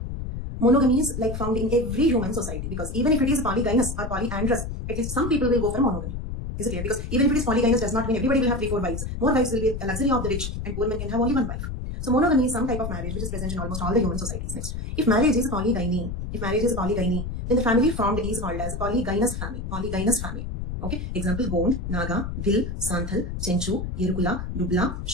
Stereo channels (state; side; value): noise; left; rumble, 5 dB below the sound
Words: Monogamy is like found in every human society, because even if it is polygynous or polyandrous, at least some people will go for monogamy. Is it clear? Because even if it is polygynous does not mean everybody will have 3-4 wives. More wives will be a luxury of the rich, and poor men can have only one wife. So monogamy is some type of marriage which is present in almost all the human societies. Next, if marriage is polygyny, then the family formed is called as polygynous family. Polygynous family. Okay. Example: Gond, Naga, Bhil, Santhal, Chenchu, Yerukula, Dubla,